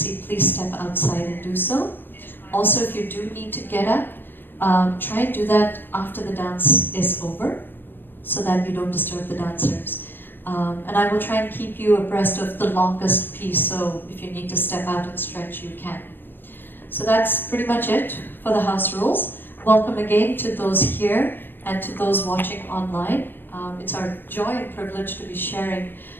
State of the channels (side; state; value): right; late; 0.096 ms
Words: please step outside and do so. Also, if you do need to get up, try and do that after the dance is over, so that you don't disturb the dancers. And I will try and keep you abreast of the longest piece, so if you need to step out and stretch, you can. So that's pretty much it for the house rules. Welcome again to those here and to those watching online. It's our joy and privilege to be sharing